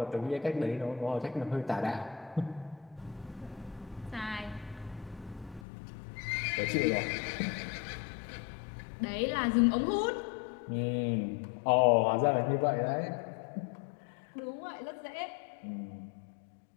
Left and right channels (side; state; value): right; drops out; at 5.7 s